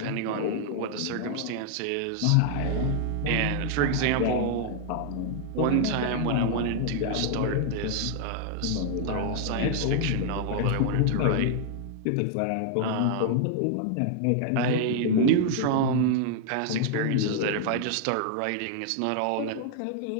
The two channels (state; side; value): different; both; correlation 0.00